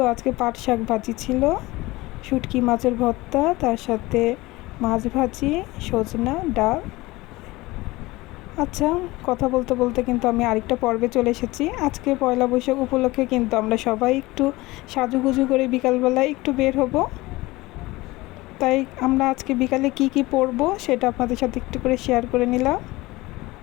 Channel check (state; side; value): quieter; right; 20.4 dB